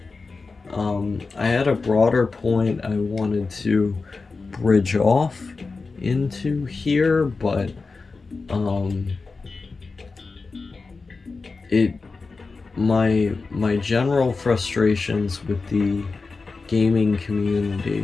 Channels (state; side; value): quieter; right; 4.2 dB